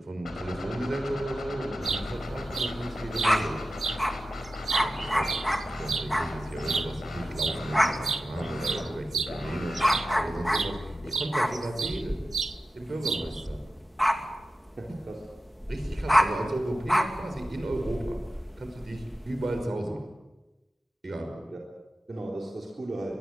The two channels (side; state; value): both; normal; correlation 0.93